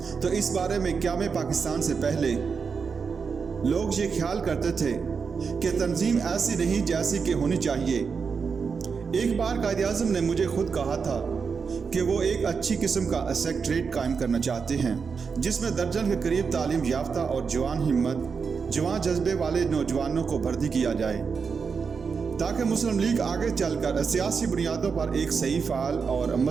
तो इस बारे में क़याम पाकिस्तान से पहले लोग ये ख्याल करते थे कि तंजीम ऐसी नहीं जैसी कि होनी चाहिए। एक बार कायद-ए-आज़म ने मुझे खुद कहा था कि वो एक अच्छी किस्म का सेक्रेटरीट कायम करना चाहते हैं जिसमें दर्जन के करीब तालीम याफ्ता और जवान हिम्मत, जवान जज्बे वाले नौजवानों को भर्ती किया जाए ताकि मुस्लिम लीग आगे चलकर सियासी बुनियादों पर एक सही, फाल और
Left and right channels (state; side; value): quieter; left; 5.6 dB